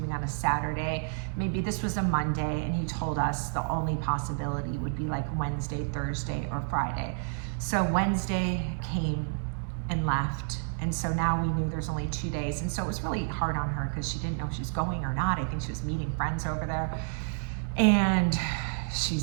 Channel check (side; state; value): left; silent; digital silence